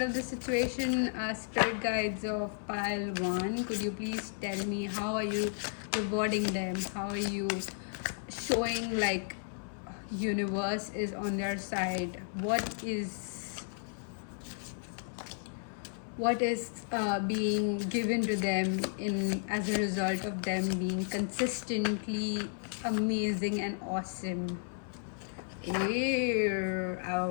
of the situation? Spirit guides of pile 1, could you please tell me how are you rewarding them? How are you showing like universe is on their side? What is being given to them in as a result of them being consistently amazing and awesome? Ew, I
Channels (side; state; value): right; silent; 55 dB below the other